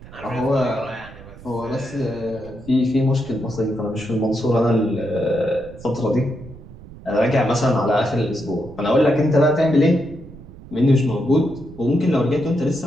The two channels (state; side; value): noise; right; rumble, 18 dB below the sound